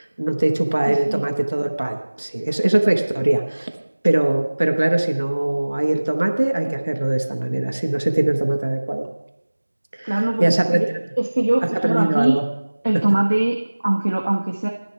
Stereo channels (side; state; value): both; inverted; correlation -1.00